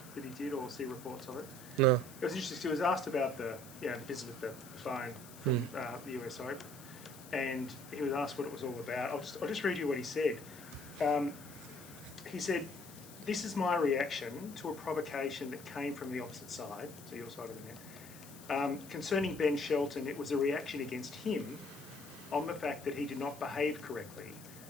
did, or see reports of it? No. It was interesting. He was asked about the business with the phone from the US Open. And he was asked what it was all about. I'll just read you what he said. He said, "This is my reaction to a provocation that came from the opposite side," so your side of the net. "Concerning Ben Shelton, it was a reaction against him on the fact that he did not behave correctly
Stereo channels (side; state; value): left; noise; hiss, 17 dB below the sound